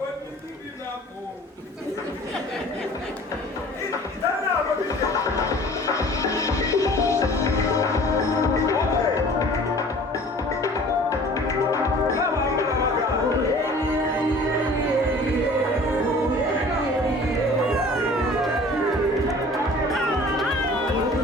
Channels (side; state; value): both; normal; correlation 0.47